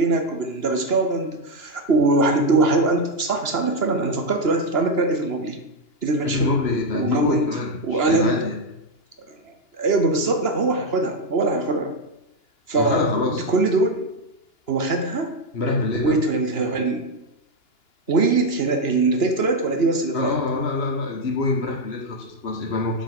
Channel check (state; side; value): late; right; 2.9 ms